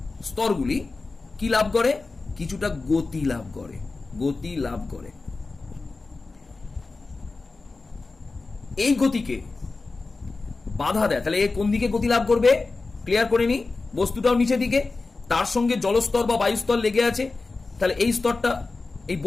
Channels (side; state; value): right; quieter; 3.7 dB